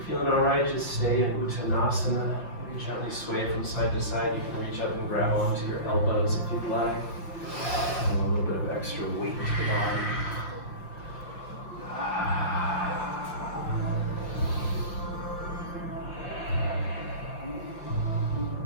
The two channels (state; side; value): late; right; 5.7 ms